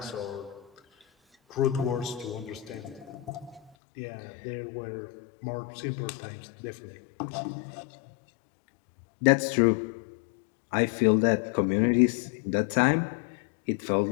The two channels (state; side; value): drops out; right; at 3.7 s